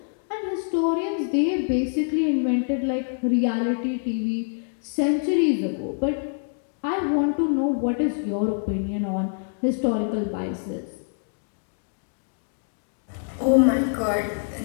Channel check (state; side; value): silent; right; digital silence